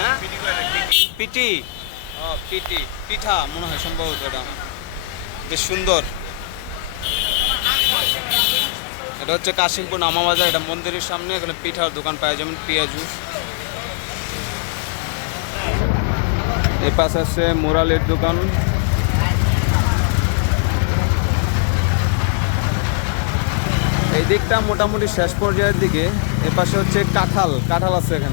পিটি। ও পিটি পিঠা মনে হয় সম্ভবত। এটা বেশ সুন্দর। এটা হচ্ছে কাশিমপুর নামাবাজার। এটা মন্দিরের সামনে। এখানে পিঠার দোকান পাওয়া যেমন পেঁয়াজু। এই পাশে আছে মোরালের দোকান। এই দিকটা মোটামুটি শেষ পর্যায়ের দিকে। এ পাশে হচ্ছে কাঁঠাল। কাঁঠাল আছে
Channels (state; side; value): drops out; right; at 7.9 s